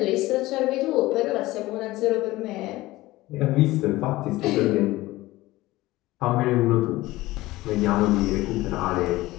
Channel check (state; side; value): quieter; right; 18.3 dB